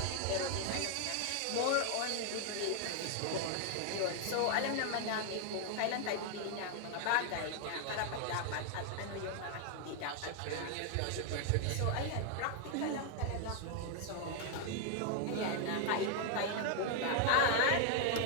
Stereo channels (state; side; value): different; both; correlation 0.00